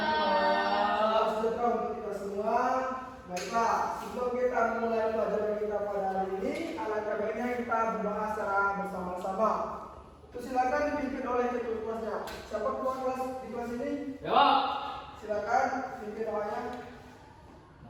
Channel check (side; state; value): both; identical; correlation 1.00